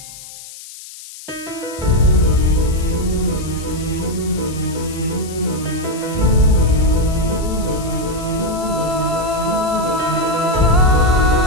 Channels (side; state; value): left; noise; hiss, 15 dB below the sound